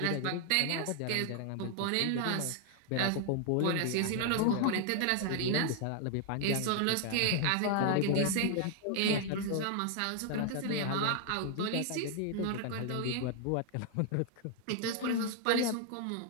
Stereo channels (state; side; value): different; both; correlation 0.00